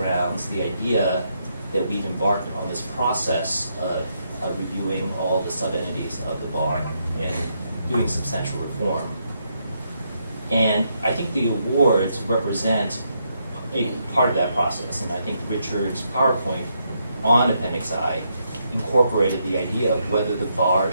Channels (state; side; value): inverted; both; correlation -0.78